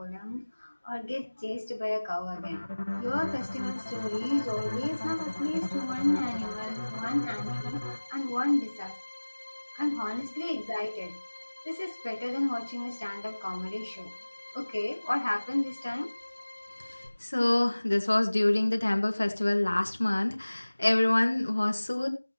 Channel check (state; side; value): inverted; both; correlation -1.00